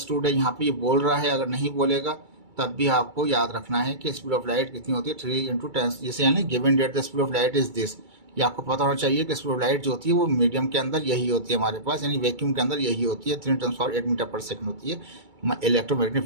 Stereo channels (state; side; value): late; left; 2.3 ms